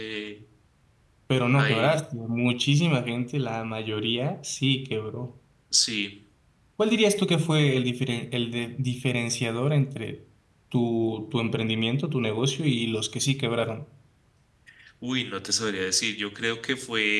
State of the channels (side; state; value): both; identical; correlation 1.00